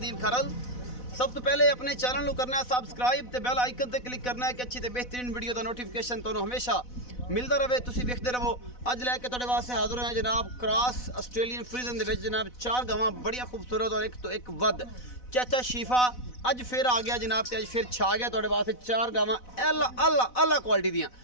खरल। सब तो पहले अपने चैनल को करना है सबसक्राइब ते बेल आइकन ते क्लिक करना है कि अच्छी ते बेहतरीन वीडियो का नोटिफिकेशन तुहानू हमेशा मिलता रहे, तुसी वेखदे रहो। अज लैके तुहाडे वास्ते हाजिर हैं जनाब क्रॉस ऑस्ट्रेलियन फ्रीजन दे विच जनाब 4 गावां बड़िया खूबसूरत और एक तो एक वध। चाचा शीफा अज फिर आ गया जनाब, अज फिर छा गया तुहाडे वास्ते 4 गावां अल्लाह क्वालिटी दियां,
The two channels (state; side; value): late; right; 4.0 ms